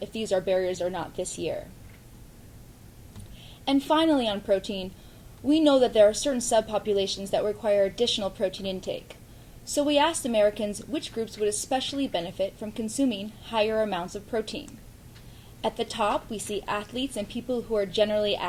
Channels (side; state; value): both; identical; correlation 1.00